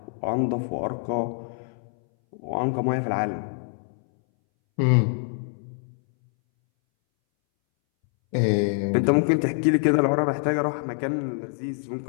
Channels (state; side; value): silent; right; 61 dB below the other